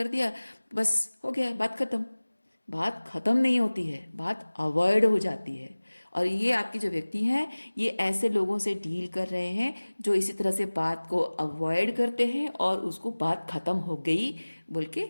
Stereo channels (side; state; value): both; inverted; correlation -1.00